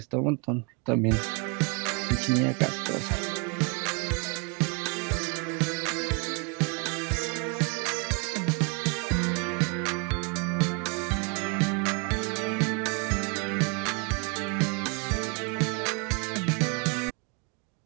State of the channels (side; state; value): left; quieter; 34.6 dB